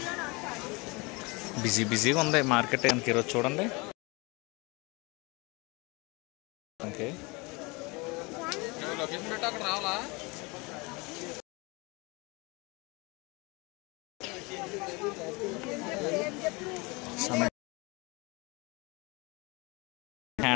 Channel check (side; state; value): right; quieter; 26.3 dB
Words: బిజీగా ఉంది మార్కెట్ కనుక ఈరోజు చూడండి. ఓకే,